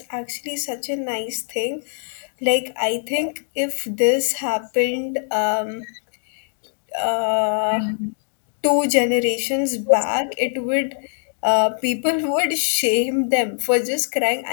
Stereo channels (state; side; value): silent; right; digital silence